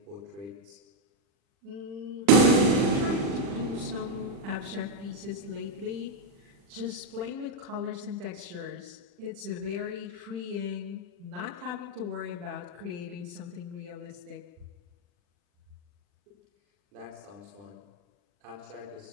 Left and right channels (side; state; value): left; late; 40 ms